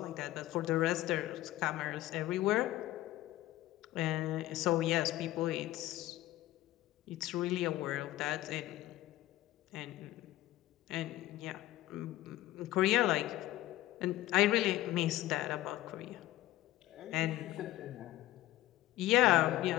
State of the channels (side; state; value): right; quieter; 15.7 dB